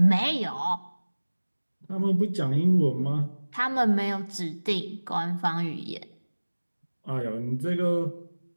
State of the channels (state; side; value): inverted; both; correlation -1.00